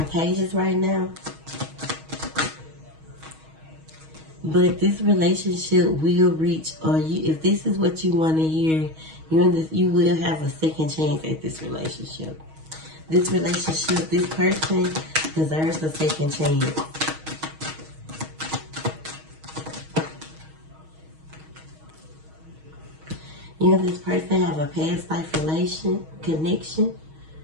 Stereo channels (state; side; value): late; left; 6.3 ms